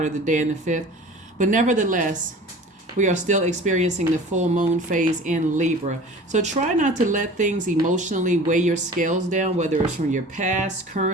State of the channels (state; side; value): normal; both; correlation 0.42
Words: of the day in the 5th. But nevertheless, we are still experiencing the full moon phase in Libra. So try not to let things emotionally weigh your scales down, whether it's from your past,